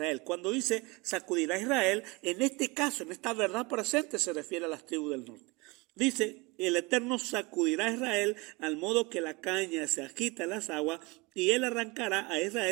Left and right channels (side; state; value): left; quieter; 25.1 dB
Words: Cuando dice sacudirá a Israel, en este caso, en esta verdad presente, se refiere a las tribus del norte. Dice: el Eterno sacudirá a Israel al modo que la caña se agita en las aguas, y él arrancará a